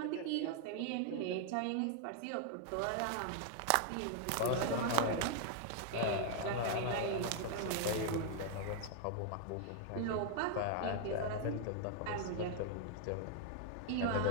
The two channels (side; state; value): both; different; correlation 0.00